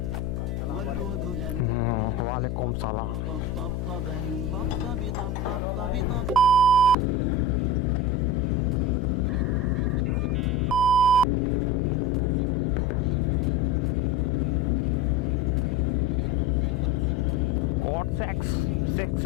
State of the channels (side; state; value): left; noise; hum, 3 dB below the sound